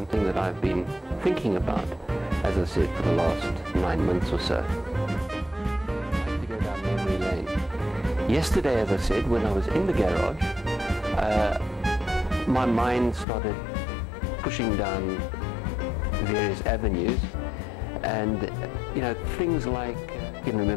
that I've been thinking about, as I said, for the last 9 months or so. I like to go down memory lane. Yesterday, as I said, when I was in the garage, my mind started pushing down various avenues, and you know, things like, I can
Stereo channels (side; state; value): right; drops out; at 13.2 s